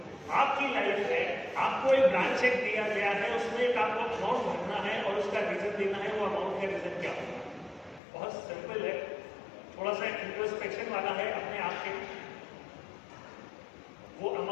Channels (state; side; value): drops out; right; at 8.0 s